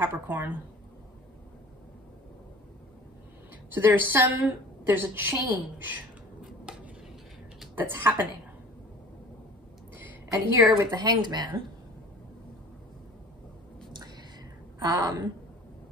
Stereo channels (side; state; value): both; normal; correlation 0.45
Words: So there's a change that's happening. And here with the Hanged Man,